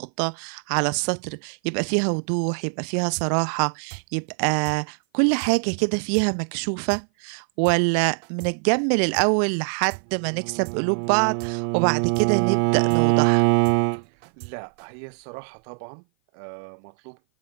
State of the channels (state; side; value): silent; left; 57 dB below the other